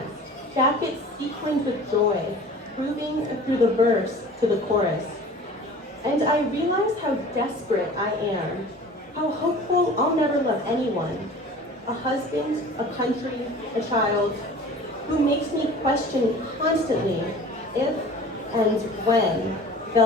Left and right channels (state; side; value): normal; both; correlation 0.43